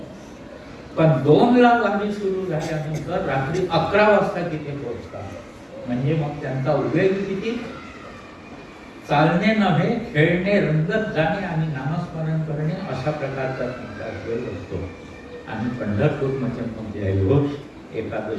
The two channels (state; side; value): identical; both; correlation 1.00